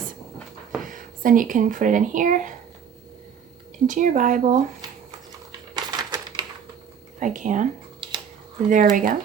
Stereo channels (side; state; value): left; quieter; 7.6 dB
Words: So then you can put it in here, into your Bible, if I can. There we go.